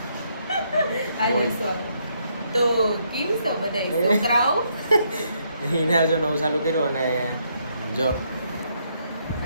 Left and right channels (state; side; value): inverted; both; correlation -0.74